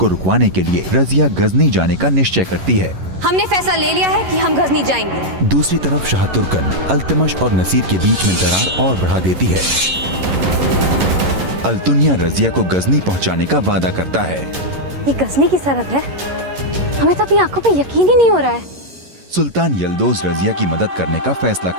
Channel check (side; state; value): left; late; 11 ms